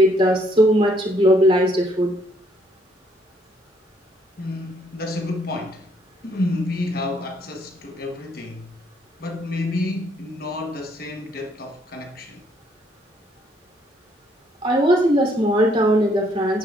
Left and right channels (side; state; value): both; normal; correlation 0.68